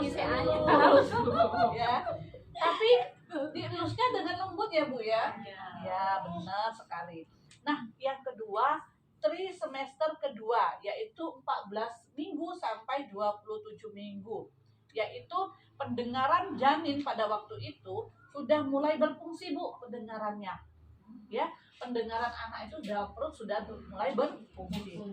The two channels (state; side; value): identical; both; correlation 1.00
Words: ya. Tapi dielusnya dengan lembut ya Bu ya. Ya, benar sekali. Nah, yang kedua, trimester kedua, yaitu 14 minggu sampai 27 minggu. Yaitu pendengaran janin pada waktu itu sudah mulai berfungsi Bu, pendengarannya. Ya, pendengaran anak itu dalam perut sudah mulai berfungsi.